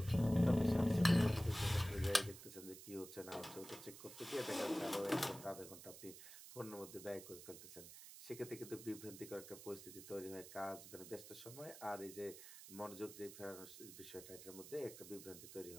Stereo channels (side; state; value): right; noise; hiss, 14 dB below the sound